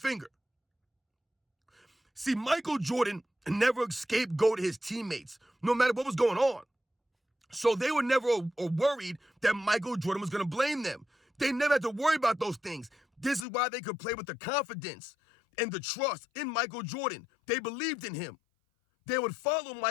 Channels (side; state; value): right; drops out; at 13.5 s